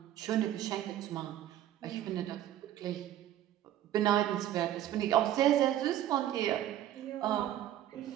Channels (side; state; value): left; quieter; 12.4 dB